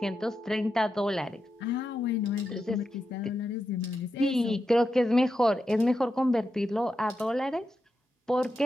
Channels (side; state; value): both; normal; correlation 0.87